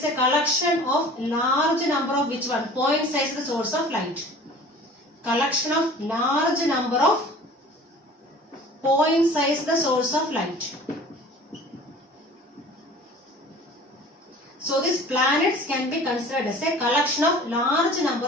a collection of large number of which one? Point sized source of light. Collection of large number of point sized source of light. So these planets can be considered as a collection of large number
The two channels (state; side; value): normal; both; correlation 0.44